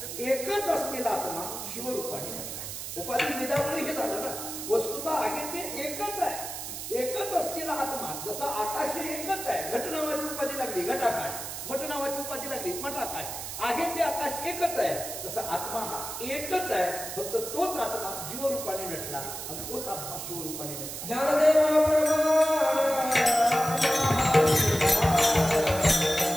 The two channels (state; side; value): noise; right; hiss, 7 dB below the sound